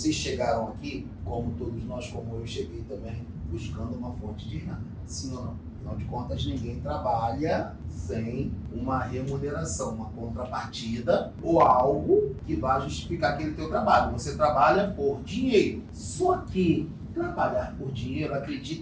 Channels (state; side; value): identical; both; correlation 1.00